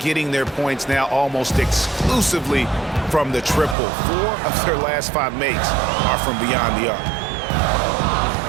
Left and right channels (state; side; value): drops out; left; at 3.8 s